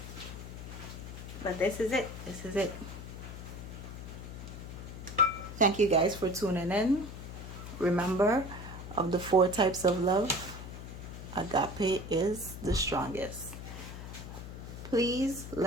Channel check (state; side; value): noise; left; hum, 10 dB below the sound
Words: But this is it. This is it. Thank you guys for tuning in. Remember, of the 4 types of love, agape is the strongest. Please